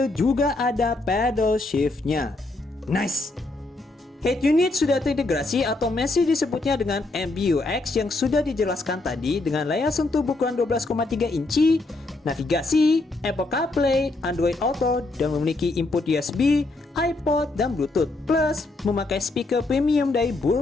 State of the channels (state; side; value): quieter; right; 3.0 dB